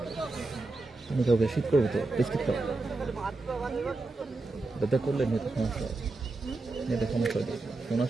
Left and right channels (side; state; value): left; quieter; 3.3 dB